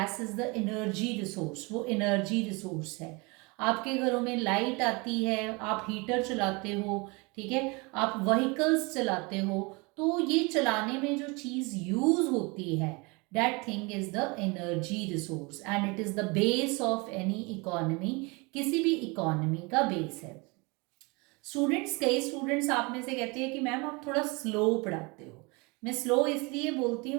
is the energy resource, वो एनर्जी रिसोर्स है. आपके घरों में लाइट आती है, आप हीटर चलाते हो, ठीक है, आप व्हीकल्स चलाते हो, तो ये चलाने में जो चीज़ यूज होती है that thing is the energy resource and it is the base of any economy. किसी भी इकोनॉमी का बेस है. स्टूडेंट्स, कई स्टूडेंट्स आप में से कहते हैं कि मैम आप थोड़ा स्लो पढ़ाते हो. मैं स्लो इसलिए बोलती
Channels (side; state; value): left; quieter; 27.8 dB